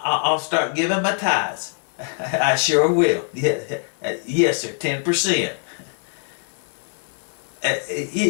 start giving my tithes. I sure will. Yeah, yes, sir, 10%.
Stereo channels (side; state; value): right; silent; 56 dB below the other